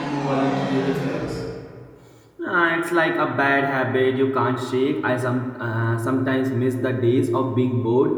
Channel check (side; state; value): both; identical; correlation 1.00